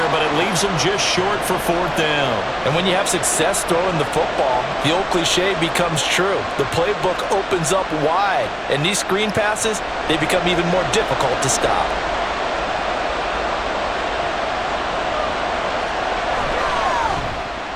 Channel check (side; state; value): both; identical; correlation 1.00